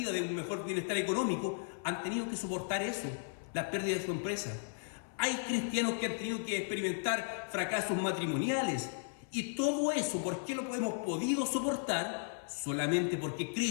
de un mejor bienestar económico. Han tenido que soportar eso, la pérdida de su empresa. Hay cristianos que han tenido que experimentar fracasos matrimoniales. Y todo eso, ¿por qué lo hemos podido soportar? Solamente porque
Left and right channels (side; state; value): right; silent; 54 dB below the other